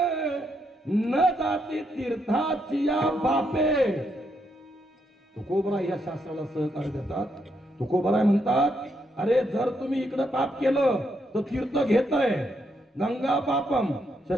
न जाती तीर्थाची या बापे. तुकोबराय या शास्त्राला सहकार्य देतात. तुकोबराय म्हणतात, अरे जर तुम्ही इकडे पाप केलं तर तीर्थ घेतय. गंगा पापम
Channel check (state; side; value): normal; both; correlation 0.78